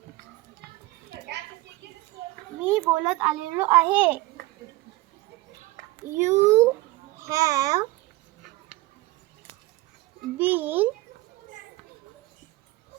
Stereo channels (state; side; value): quieter; left; 19.3 dB